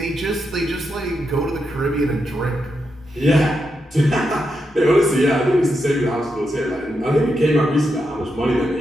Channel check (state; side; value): normal; both; correlation 0.84